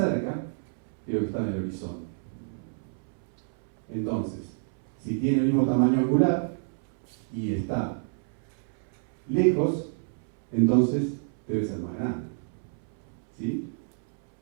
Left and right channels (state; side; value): silent; left; 59 dB below the other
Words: que lo que estaba en el horizonte. Entonces, si tiene el mismo tamaño angular y está lejos, entonces debe ser más grande. ¿Sí?